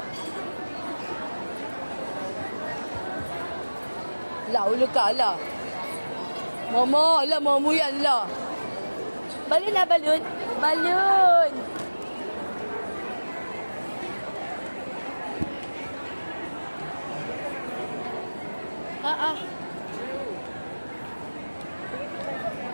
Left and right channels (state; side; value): inverted; both; correlation -1.00